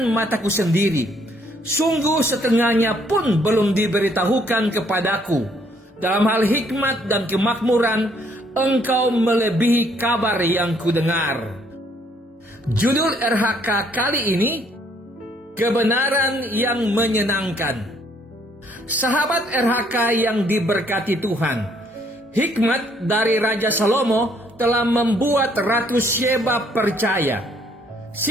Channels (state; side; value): normal; both; correlation 0.66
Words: mataku sendiri. Sungguh setengahnya pun belum diberitahukan kepadaku. Dalam hal hikmat dan kemakmuran, engkau melebihi kabar yang kudengar." Judul RHK kali ini, kebenaran yang menyenangkan. Sahabat RHK yang diberkati Tuhan, hikmat dari Raja Salomo telah membuat Ratu Sheba percaya.